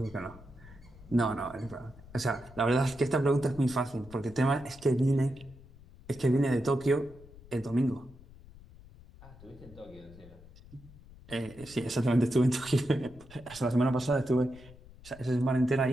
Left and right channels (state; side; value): noise; left; rumble, 21 dB below the sound